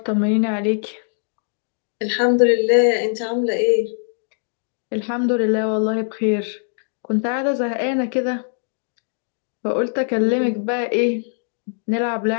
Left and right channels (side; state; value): right; silent; digital silence